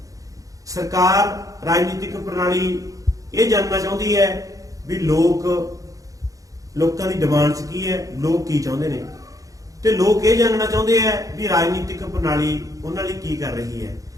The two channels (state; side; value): late; left; 0.17 ms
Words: ਸਰਕਾਰ ਰਾਜਨੀਤਿਕ ਪ੍ਰਣਾਲੀ ਇਹ ਜਾਣਨਾ ਚਾਹੁੰਦੀ ਹੈ ਵੀ ਲੋਕਾਂ ਦੀ ਡਿਮਾਂਡਸ ਕੀ ਹੈ, ਲੋਕ ਕੀ ਚਾਹੁੰਦੇ ਨੇ, ਤੇ ਲੋਕ ਇਹ ਜਾਣਨਾ ਚਾਹੁੰਦੇ ਹੈ ਵੀ ਰਾਜਨੀਤਿਕ ਪ੍ਰਣਾਲੀ ਉਹਨਾਂ ਲਈ ਕੀ ਕਰ ਰਹੀ ਹੈ।